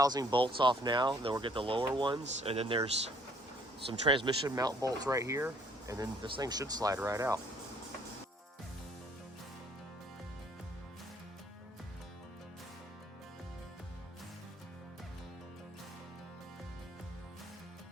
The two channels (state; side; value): normal; both; correlation 0.61